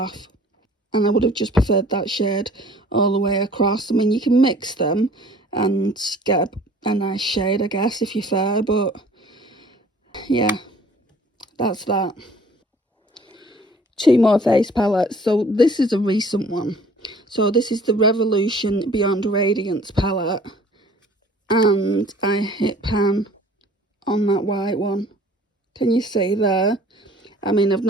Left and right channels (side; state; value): both; normal; correlation 0.52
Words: And I would have just preferred that shade all the way across. I mean, you can mix them and get a nice shade, I guess, if you're fair. But yeah, that's that. 2 more face palettes. So this is a recent one. So this is the Revolution Beyond Radiance palette. And I hit pan on that white one. Can you see there? I mean, I've